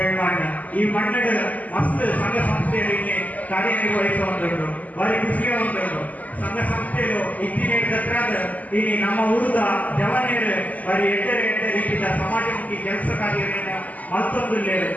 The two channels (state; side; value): late; right; 0.077 ms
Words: ಈ ಮಣ್ಣು ಮಸ್ತ್ ಸಂಘ ಸಂಸ್ಥೆಯಲ್ಲಿ ಕಾರ್ಯನಿರ್ವಹಿಸುವಂಥದ್ದು, ಭಾರಿ ಖುಷಿಯ ಒಂದುಂಟು. ಸಂಘ ಸಂಸ್ಥೆಯು ಇತ್ತಿನ ದತ್ರಾದ ಈ ನಮ್ಮ ಊರದ ಜವಾನಿಯರು ಭಾರಿ ಎಡ್ಡೆ ರೀತಿಯ ಸಮಾಜಮುಖಿ ಕೆಲಸ ಕಾರ್ಯಗಳನ್ನು ಮತ್ತೊಂದು